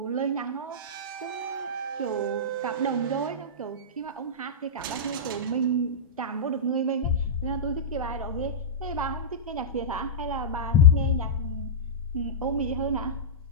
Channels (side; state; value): both; normal; correlation -0.15